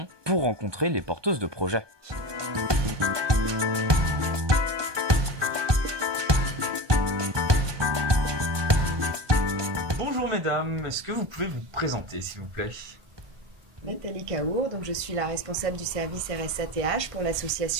pour rencontrer les porteuses de projets. Bonjour mesdames, est-ce que vous pouvez vous présenter s'il vous plaît? Nathalie Caour, donc je suis la responsable du service RSATH pour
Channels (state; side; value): late; left; 1.2 ms